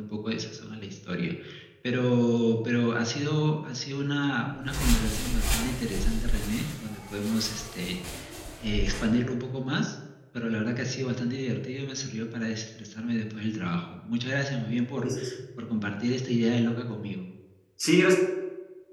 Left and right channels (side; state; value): both; identical; correlation 1.00